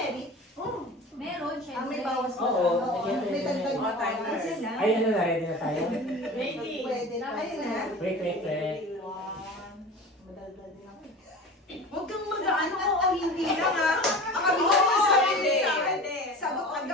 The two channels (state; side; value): normal; both; correlation 0.36